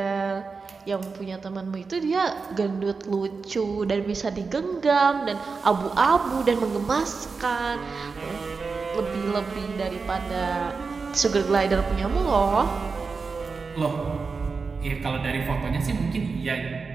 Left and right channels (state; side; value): quieter; left; 4.7 dB